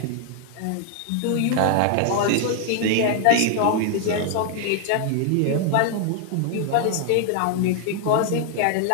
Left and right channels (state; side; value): different; both; correlation 0.00